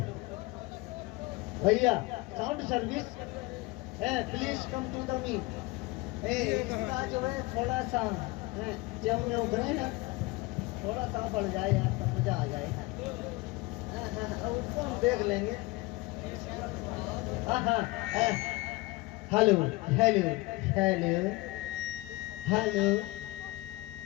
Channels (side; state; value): right; quieter; 22.2 dB